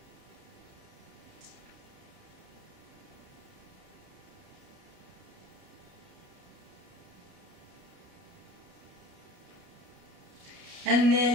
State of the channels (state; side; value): late; left; 30 ms